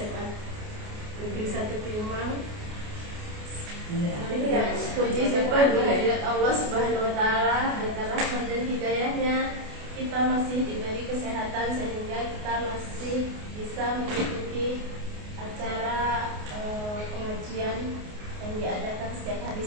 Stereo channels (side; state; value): left; late; 28 ms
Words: Negeri 1 Piumang. Puji syukur kehadirat Allah Subhanahu wa Ta'ala, berkat rahmat dan hidayahnya kita masih diberi kesehatan sehingga kita masih bisa mengikuti acara pengajian yang diadakan setiap hari